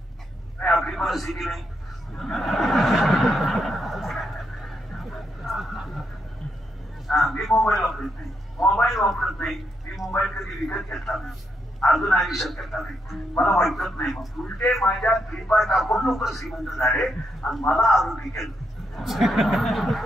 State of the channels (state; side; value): normal; both; correlation 0.80